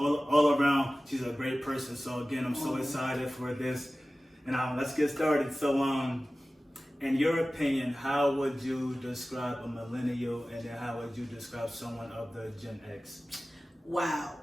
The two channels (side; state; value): both; normal; correlation 0.96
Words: around. She's a great person. So again, I'm so excited for this. And let's get started. So in your opinion, how would you describe a millennial, and then how would you describe someone of the Gen X? Wow.